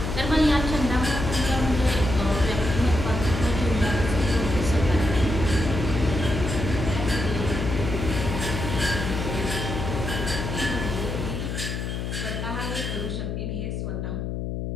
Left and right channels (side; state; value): left; noise; hum, 4 dB below the sound